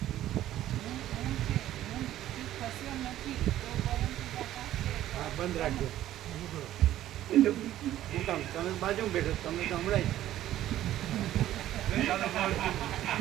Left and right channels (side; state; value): left; quieter; 13.2 dB